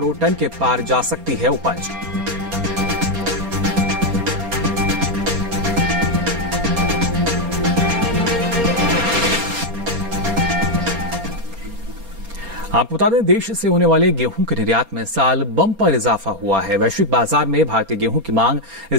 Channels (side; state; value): left; late; 4.3 ms